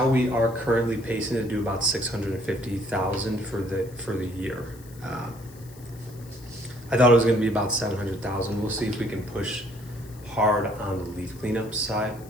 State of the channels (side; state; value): left; noise; hiss, 23 dB below the sound